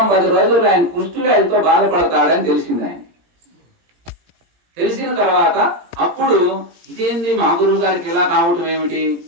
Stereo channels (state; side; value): late; left; 17 ms